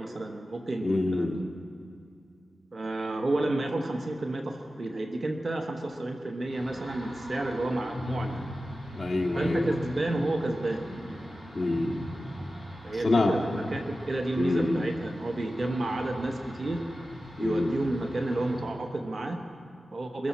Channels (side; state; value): both; normal; correlation 0.94